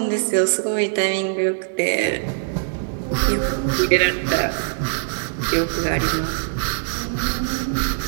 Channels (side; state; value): left; silent; digital silence